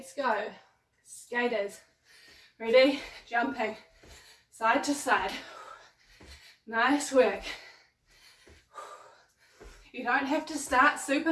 go. Skaters, ready, jumping, side to side. Nice work. You don't have to start super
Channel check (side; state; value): both; identical; correlation 1.00